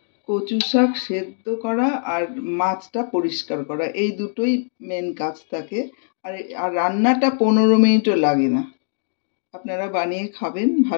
কচু শাক সেদ্ধ করা আর মাছটা পরিষ্কার করা, এই দুটোই মেন কাজ থাকে। আর রান্নাটা 15 মিনিটও লাগে না। আপনারা বানিয়ে খাবেন,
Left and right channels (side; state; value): right; silent; digital silence